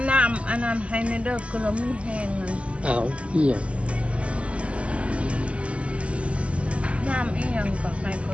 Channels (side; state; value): left; late; 0.060 ms